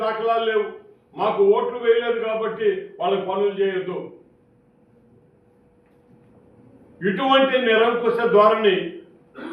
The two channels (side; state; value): both; identical; correlation 1.00